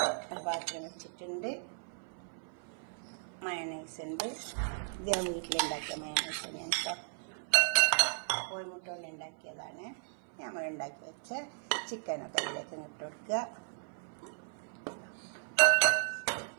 പാത്രം വെച്ചിട്ടുണ്ട്. മയണൈസ് ഉണ്ട്. ഇത് ഞാൻ വീട്ടിലുണ്ടാക്കിയ മയണൈസ് ഞാൻ കോഴിമുട്ട കൊണ്ട് ഉണ്ടാക്കിയതാണ്. നമ്മൾ ഉണ്ടാക്കി വെച്ച ചിക്കനൊക്കെ അതിലേക്ക് ഇട്ട് കൊടുക്കുക.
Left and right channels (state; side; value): silent; left; 54 dB below the other